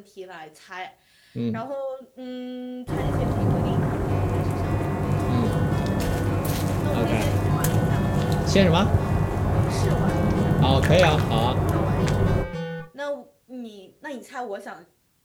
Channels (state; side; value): identical; both; correlation 1.00